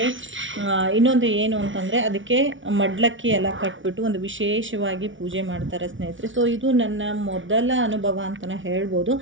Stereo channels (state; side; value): late; left; 0.56 ms